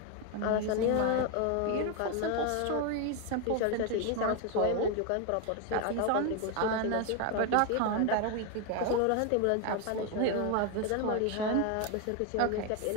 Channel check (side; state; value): both; different; correlation 0.01